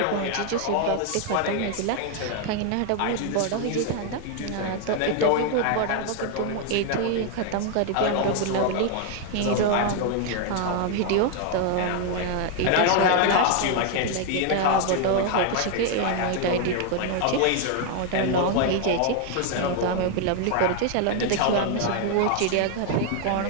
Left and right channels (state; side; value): different; both; correlation 0.00